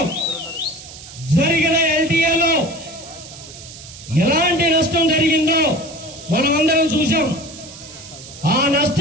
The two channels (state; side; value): noise; right; hiss, 16 dB below the sound